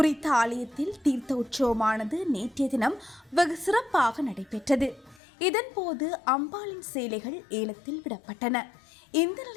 ஆலயத்தில் தீர்த்த உற்சவமானது நேற்றைய தினம் வெகு சிறப்பாக நடைபெற்றது. இதன்போது அம்பாளின் சேலைகள் ஏலத்தில் விடப்பட்டன. இந்த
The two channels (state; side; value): drops out; right; at 5.2 s